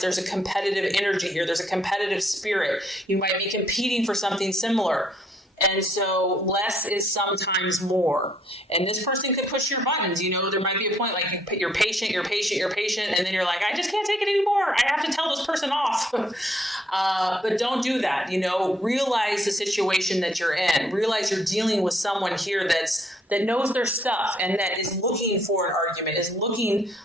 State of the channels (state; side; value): normal; both; correlation 0.68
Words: there's a competitive energy here. There's a competitive spirit. You might be competing for something similar. And so less is sometimes more. And this person could push your buttons. There might be a point you're patient, and then you're like, I just can't take it anymore. I have to tell this person off. But don't do that. Realize the situation that you're in. Realize you're dealing with someone here that knows their stuff and that is looking for an argument, is looking